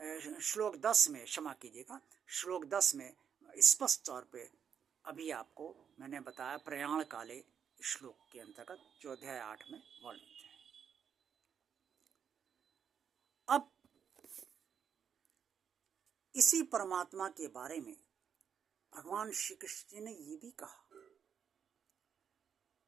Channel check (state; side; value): quieter; left; 7.7 dB